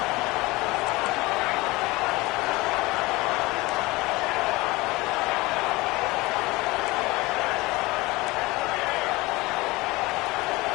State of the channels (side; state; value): right; quieter; 21.9 dB